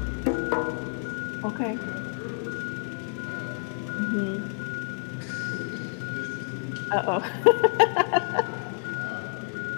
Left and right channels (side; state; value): right; silent; digital silence